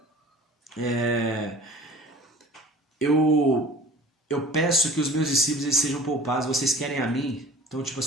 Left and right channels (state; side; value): normal; both; correlation 0.44